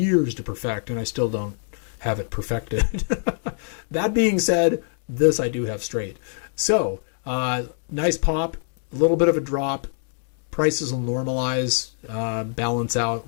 to perfect, and I still don't have it perfected. That being said, this I do have straight. So nice pop, a little bit of a drop. Prices will normalize, balance out,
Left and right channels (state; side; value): silent; right; digital silence